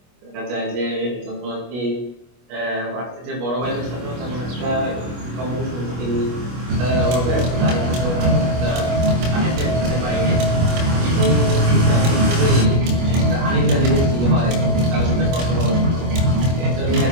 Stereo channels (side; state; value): left; late; 25 ms